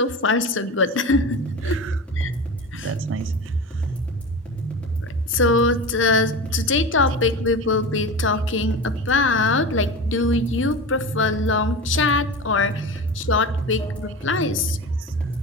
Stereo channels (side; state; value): both; normal; correlation 0.28